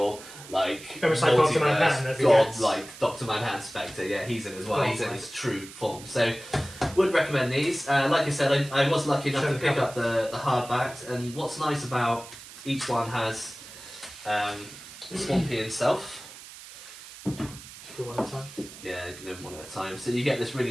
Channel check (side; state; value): right; noise; hiss, 16 dB below the sound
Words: like almost like Dr. Manhattan, as he god, gets. like Dr. Manhattan Spectre. Yeah, he's in as well. Oh, He's in right. his true form. So, would recommend these. Like I said, I was lucky enough Show to the pick cover. up the hardbacks, and what's nice about each one has Swampy himself. Should do one at a time. Yeah, you can do them one at a time. So you get this